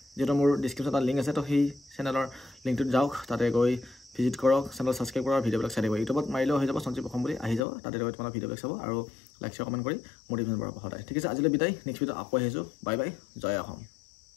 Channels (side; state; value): right; drops out; at 7.6 s